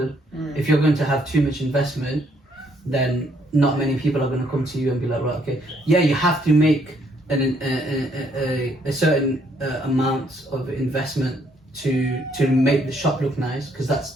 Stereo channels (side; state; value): both; normal; correlation 0.69